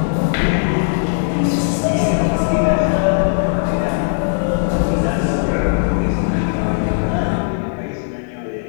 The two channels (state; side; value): silent; right; digital silence